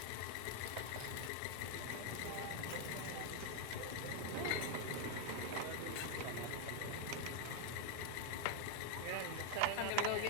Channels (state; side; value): different; both; correlation 0.00